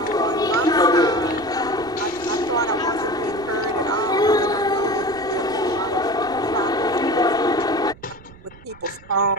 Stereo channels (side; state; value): right; noise; rumble, 22 dB below the sound